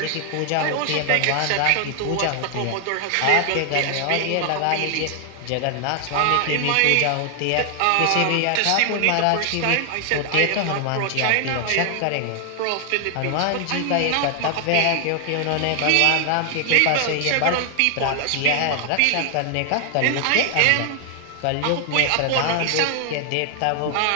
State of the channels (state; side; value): different; both; correlation 0.00